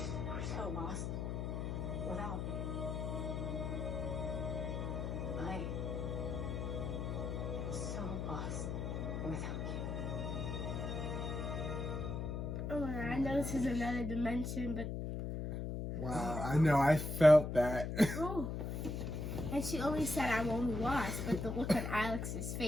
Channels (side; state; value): left; noise; hum, 3 dB below the sound